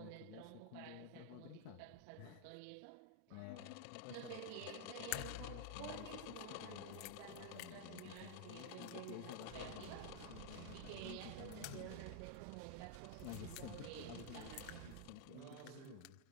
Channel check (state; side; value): different; both; correlation 0.00